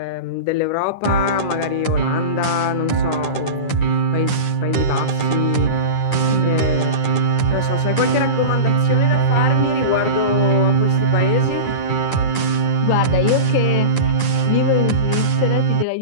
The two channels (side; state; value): right; late; 9.9 ms